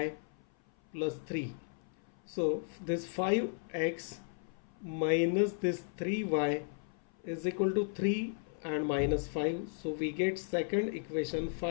plus 3. So this 5x minus this 3y is equal to 3 and minus 5. So we get second equation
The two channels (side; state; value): right; silent; 54 dB below the other